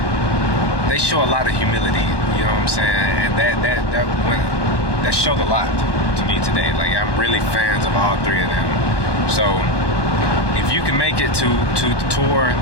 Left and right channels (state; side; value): late; right; 1.2 ms